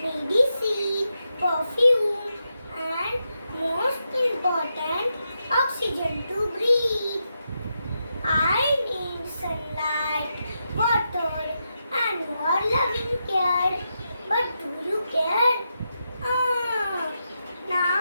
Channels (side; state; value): both; inverted; correlation -0.85